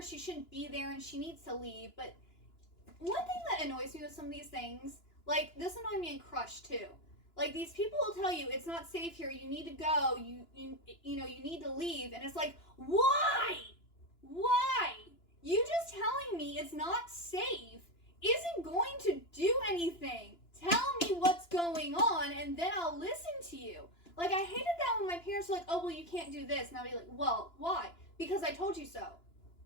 she shouldn't be there and she needs to leave. But one thing that annoys me with some of these things, like this annoyed me in Crush too. Like these people will tell you it's not safe here, you need to go, you know, you need to leave, and it's like, why? You just telling me it's not safe isn't going to do anything. Tell me what's going on and then I'll listen to you. Like I hated that when my parents were like, oh well, you can't do this, and I'll be like, well, why? Because I told you so.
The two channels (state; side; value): late; right; 2.9 ms